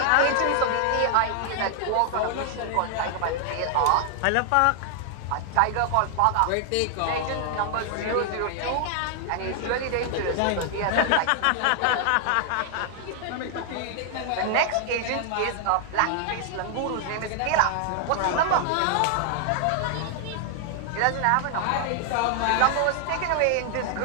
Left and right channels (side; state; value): both; different; correlation 0.00